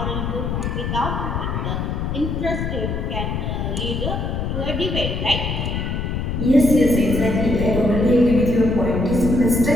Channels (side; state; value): left; noise; rumble, 2 dB below the sound